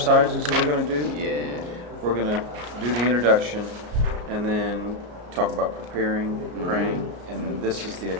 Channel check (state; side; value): late; left; 34 ms